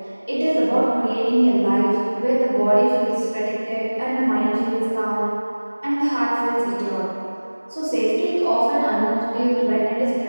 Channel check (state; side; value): inverted; both; correlation -1.00